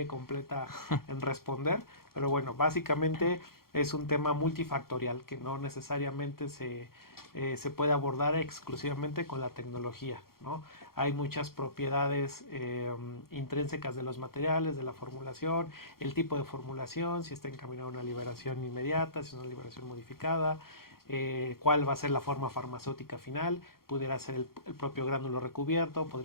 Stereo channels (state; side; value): late; right; 0.93 ms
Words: completa en responder, pero bueno, básicamente es un tema multifactorial que no necesariamente se puede abordar exclusivamente con la tecnología, ¿no? Hay muchas propiedades intrínsecas de los materiales, de la formulación, el tipo de formulación, si está encaminado a una liberación inmediata, si es una liberación modificada, cuál va a ser la forma farmacéutica final, pudiera ser el propio gránulo recubierto,